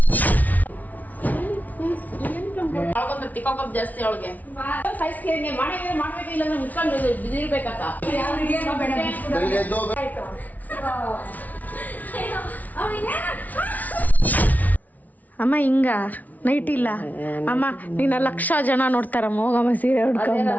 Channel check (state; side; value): late; right; 0.075 ms